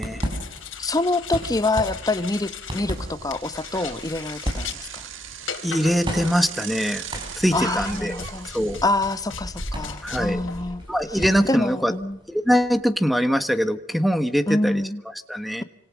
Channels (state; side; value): normal; both; correlation 0.81